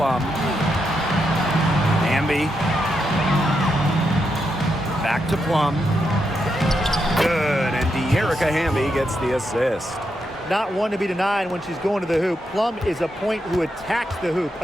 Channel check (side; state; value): both; normal; correlation 0.83